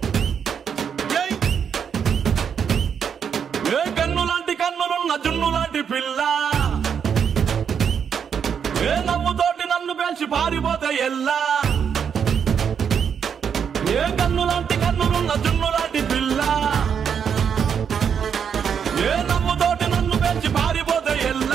ఏ కన్ను లాంటి కన్నులున్న జున్ను లాంటి పిల్ల, ఏ నవ్వుతోటి నన్ను పేల్చి పారిపోతే ఎల్లా. ఏ కన్ను లాంటి కన్నులున్న జున్ను లాంటి పిల్ల, ఏ నవ్వుతోటి నన్ను పేల్చి పారిపోతే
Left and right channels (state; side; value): quieter; left; 7.4 dB